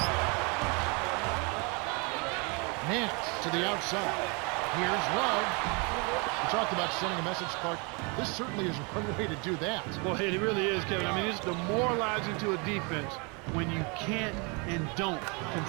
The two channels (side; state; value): left; quieter; 31.7 dB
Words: Nance to the outside. Here's Love. We talked about sending a message, Clark. This certainly is one way to do that. Well, it really is, Kevin. I mean, it's demoralizing to a defense when you can't and don't